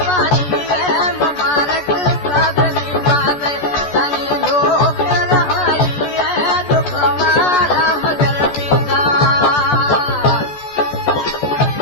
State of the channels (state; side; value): late; right; 14 ms